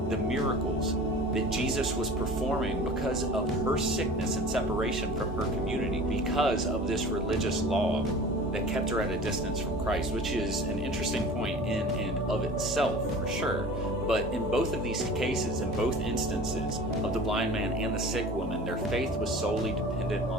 the miracles that Jesus was performing because of her sickness and separation from her community, because of this religious law that kept her at a distance from Christ, which is an interesting point in and of itself, for sure. But in both of these cases, in both instances of the blind man and the sick woman, their faith was solely dependent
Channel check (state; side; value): normal; both; correlation 0.40